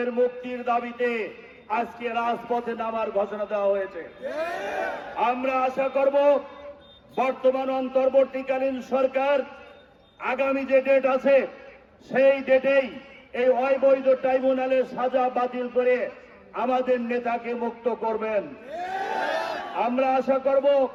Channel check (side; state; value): both; identical; correlation 1.00